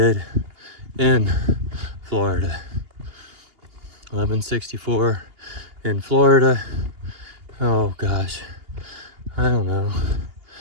in Florida. 1164 in Florida. Oh gosh, I don't know,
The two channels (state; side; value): late; left; 2.8 ms